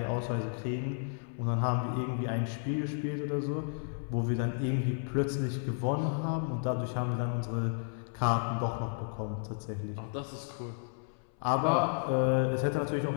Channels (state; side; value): silent; right; 56 dB below the other